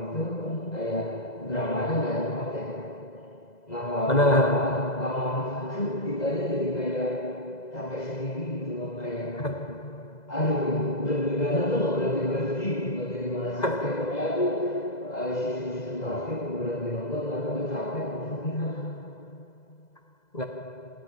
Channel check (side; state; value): right; late; 2.0 ms